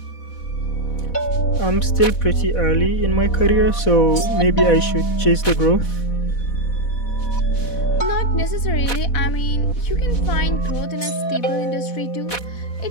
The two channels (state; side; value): late; right; 4.1 ms